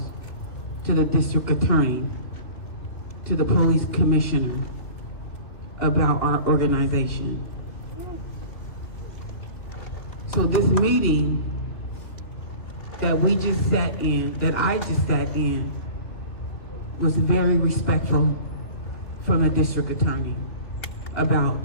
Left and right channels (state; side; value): late; right; 3.0 ms